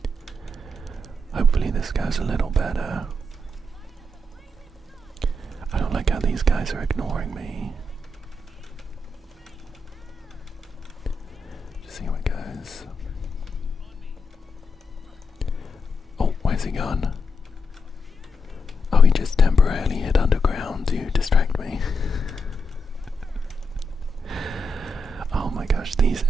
Hopefully this goes a little better. I don't like how these guys are ignoring me. Just see how it goes. Oh, where's he gone? Oh, he just temporarily hit underground to distract me. Oh my gosh, these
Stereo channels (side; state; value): both; normal; correlation 0.83